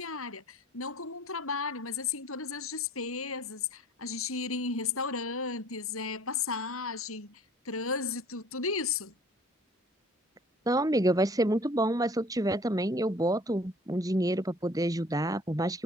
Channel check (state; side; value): normal; both; correlation 0.51